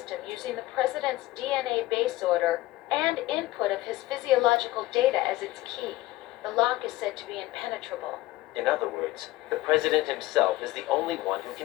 using the President's DNA base order and input of his physiological data as its key. The lock is said to be impenetrable. In other words, the President himself is the only one who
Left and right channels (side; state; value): right; quieter; 17.4 dB